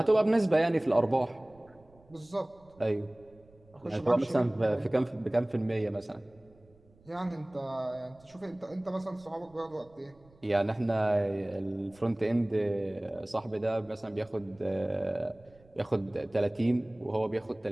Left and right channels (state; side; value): noise; right; rumble, 29 dB below the sound